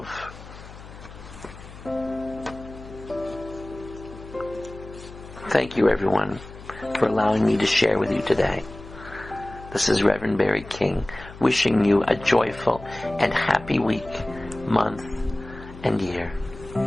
Thank you, everyone, for allowing me to share with you today. This is Reverend Barry King, wishing you a joyful and happy week, month, and year.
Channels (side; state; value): left; noise; hum, 16 dB below the sound